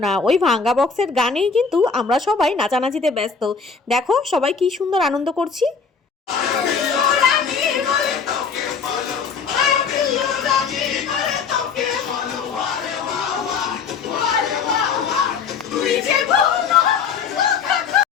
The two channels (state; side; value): quieter; right; 5.6 dB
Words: না। ওই ভাঙা বক্সের গানেই কিন্তু আমরা সবাই নাচানাচিতে ব্যস্ত। দেখো সবাই কি সুন্দর আনন্দ করছি।